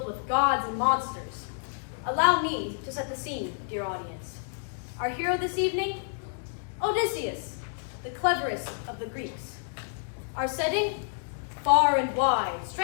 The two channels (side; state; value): right; silent; 59 dB below the other